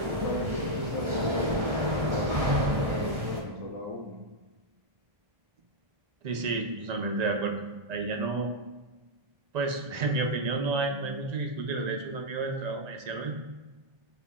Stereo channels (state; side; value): late; left; 1.4 ms